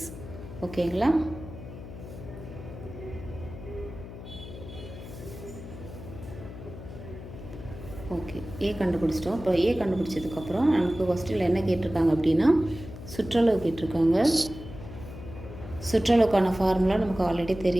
ஓகேங்களா. ஓகே, ஏ கண்டுபிடிச்சிட்டோம். இப்போ ஏ கண்டுபிடிச்சதுக்கப்புறம் நமக்கு கொஸ்டினில் என்ன கேட்டிருக்காங்க அப்படின்னா சுற்றளவு கேட்டிருக்காங்க. சுற்றளவுக்கான ஃபார்முலா நமக்கு ஆல்ரெடி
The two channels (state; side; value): noise; left; hum, 12 dB below the sound